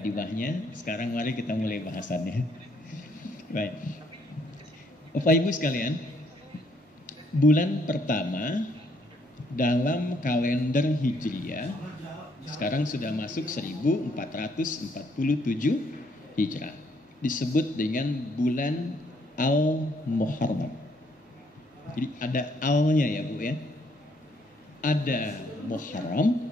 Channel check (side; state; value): both; normal; correlation 0.69